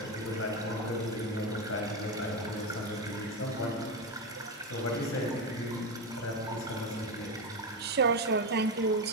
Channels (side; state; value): both; normal; correlation 0.13